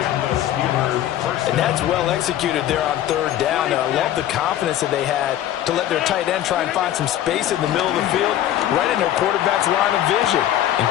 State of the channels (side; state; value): right; quieter; 12.2 dB